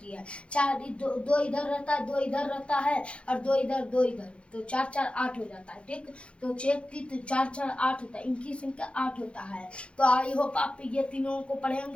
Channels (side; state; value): right; late; 0.059 ms